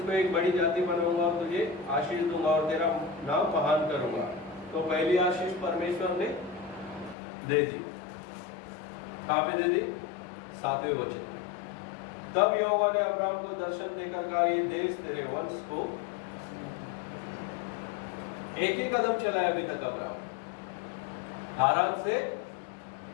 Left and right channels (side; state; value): right; drops out; at 7.2 s